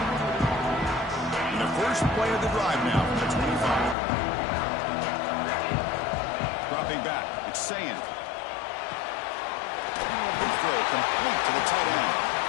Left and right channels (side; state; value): right; drops out; at 4.0 s